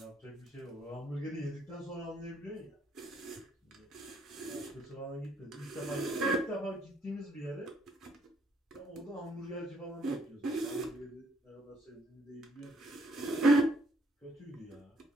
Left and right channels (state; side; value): normal; both; correlation 0.67